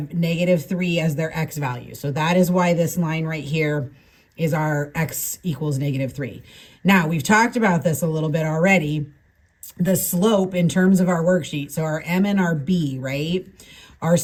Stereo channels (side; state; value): both; identical; correlation 1.00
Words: -3 as their x value. So that is why this line right here is our x equals -3. Now, we've talked about this a little bit already. The slope in terms of our worksheet, so our m and our b, right? Our